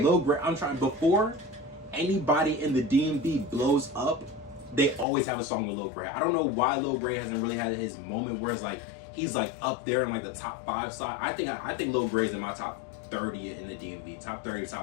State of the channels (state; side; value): drops out; right; at 5.1 s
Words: Lil Gray, I'm trying before anybody in the DMV blows up. They always have a song with Lil Gray. I don't know why Lil Gray hasn't really had his moment where it's like he's like up there in like the top 5 side. I think Lil Gray's in my top 30 in the DMV, top 30,